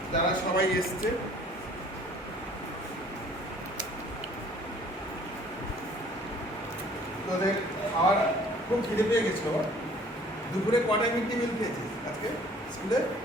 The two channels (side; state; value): both; normal; correlation 0.54